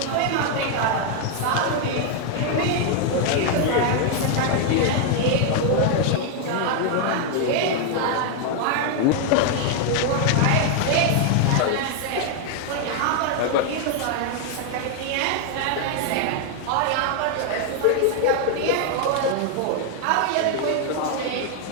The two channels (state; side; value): different; both; correlation 0.00